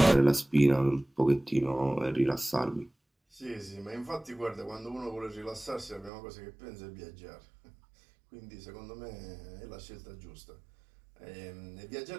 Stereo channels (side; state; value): left; drops out; at 6.1 s